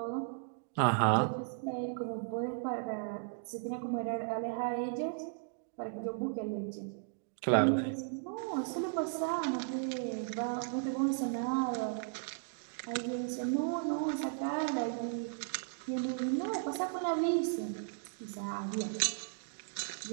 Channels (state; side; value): silent; left; digital silence